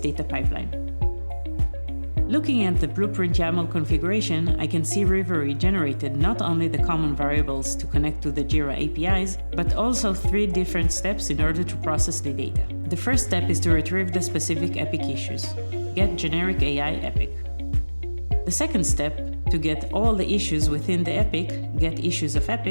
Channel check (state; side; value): inverted; both; correlation -1.00